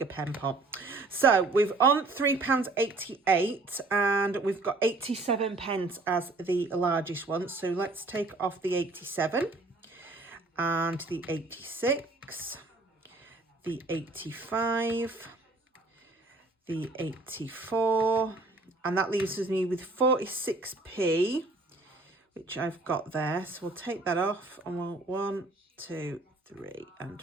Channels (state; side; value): quieter; left; 3.3 dB